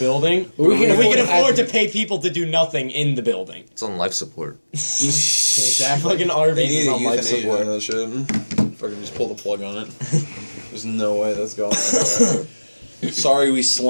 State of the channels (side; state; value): both; inverted; correlation -1.00